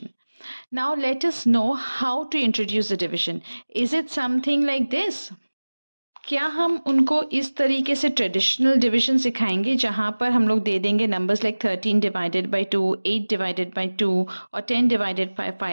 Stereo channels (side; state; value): both; inverted; correlation -1.00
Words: Now let us know how to introduce the division. Is it something like this? क्या हम उनको इस तरीके से ट्रेडिशनल डिवीजन सिखाएंगे जहाँ पर हम लोग दे देंगे numbers like 13 divided by 2, 8 divided by 2 और 10 डिवाइडेड बाई